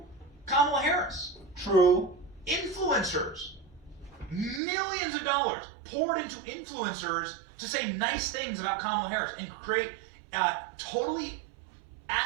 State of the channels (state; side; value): drops out; left; at 4.6 s